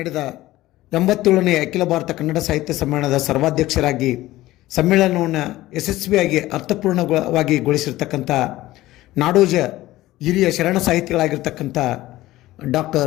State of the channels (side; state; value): right; quieter; 16.7 dB